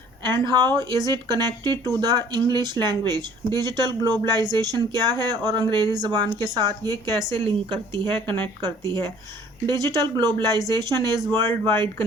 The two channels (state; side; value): normal; both; correlation 0.54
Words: and how is it connected to the English language. Digital globalisation क्या है और अंग्रेज़ी ज़बान के साथ ये कैसे लिंक करती है, कनेक्ट करती है। Digital globalisation is worldwide